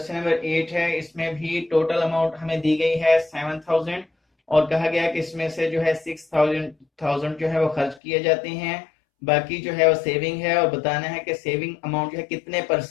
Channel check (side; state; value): right; drops out; at 8.0 s